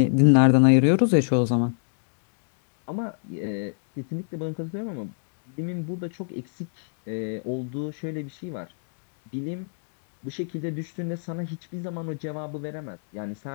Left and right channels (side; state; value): right; silent; digital silence